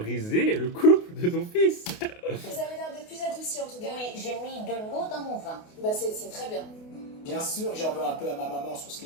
le couple de ton fils. Vous avez l'air d'être plus adouci en tout cas. Oui, j'ai mis de l'eau dans mon vin. Bah c'est très bien. Bien sûr que j'en veux un peu à ma maman sur ce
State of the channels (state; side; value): late; right; 28 ms